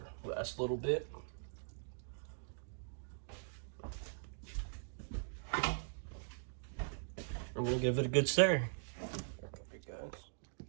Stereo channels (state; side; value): silent; left; digital silence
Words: Last little bit. I'm gonna give it a good stir. Alright guys.